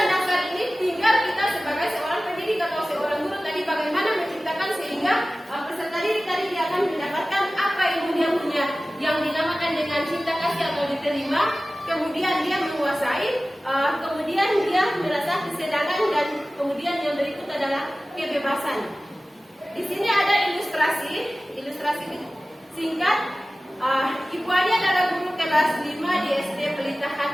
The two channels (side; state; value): both; normal; correlation 0.97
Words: dasar ini, tinggal kita sebagai seorang pendidik atau seorang guru tadi bagaimana menciptakan sehingga peserta didik tadi dia akan mendapatkan apa ilmu yang punya, yang dinamakan dengan cinta kasih atau diterima, kemudian dia menguasai, kemudian dia merasa kesenangan, dan kemudian yang berikut adalah kebebasan. Di sini ada ilustrasi singkat. Ibu Ani adalah guru kelas 5 di SD Pelita